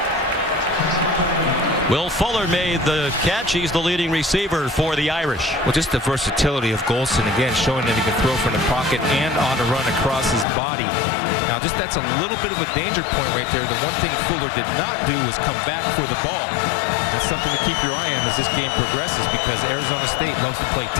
Will Fuller made the catch. He's the leading receiver for the Irish. Well, just the versatility of Golson, again, showing that he can throw from the pocket and on the run across his body. Now, just that's a little bit of a danger point right there. The one thing Fuller did not do was come back for the ball. That's something to keep your eye on as this game progresses, because Arizona State loves to play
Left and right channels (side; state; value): right; drops out; at 10.5 s